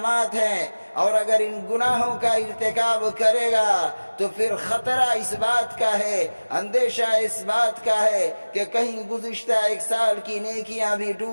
ہیں، اور اگر ان گناہوں کا ارتکاب کرے گا تو پھر خطرہ اس بات کا ہے، اندیشہ اس بات کا ہے کہ کہیں گزشتہ 1 سال کی نیکیاں بھی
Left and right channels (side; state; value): both; inverted; correlation -1.00